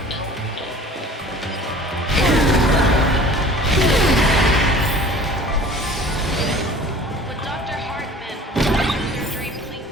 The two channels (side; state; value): both; normal; correlation 0.46